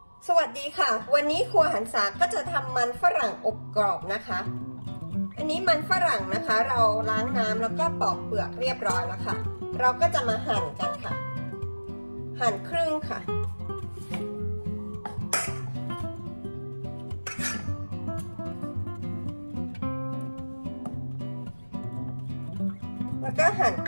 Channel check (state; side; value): inverted; both; correlation -1.00